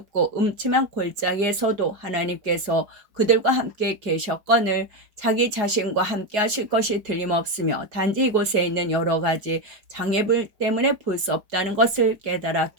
음침한 골짜기에서도 하나님께서 그들과 함께 계셨거늘 자기 자신과 함께 하실 것이 틀림없으며 단지 이곳에 있는 여러 가지 장애물 때문에 볼 수 없다는 것을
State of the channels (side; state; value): left; late; 4.8 ms